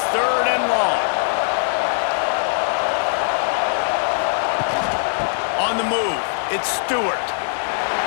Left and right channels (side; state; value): right; silent; digital silence